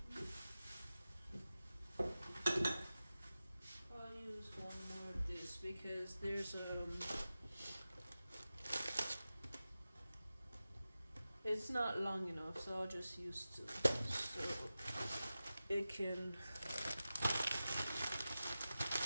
I'll use one more of this because there's it's not long enough, so I'll just use two so it can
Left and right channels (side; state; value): both; inverted; correlation -0.94